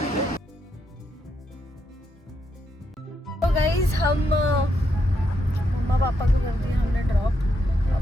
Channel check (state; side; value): normal; both; correlation 0.80